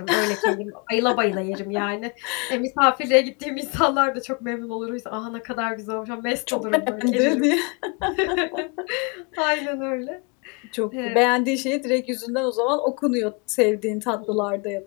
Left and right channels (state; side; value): quieter; right; 32.2 dB